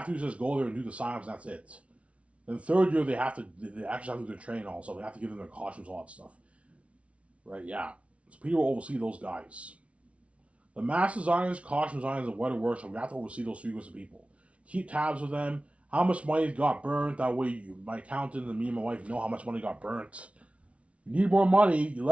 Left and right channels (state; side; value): late; left; 0.063 ms